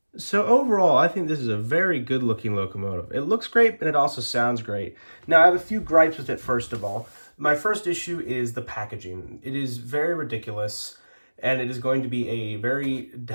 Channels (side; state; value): both; inverted; correlation -1.00